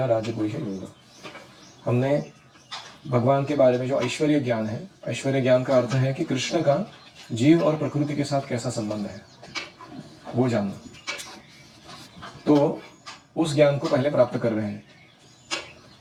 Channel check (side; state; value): both; identical; correlation 1.00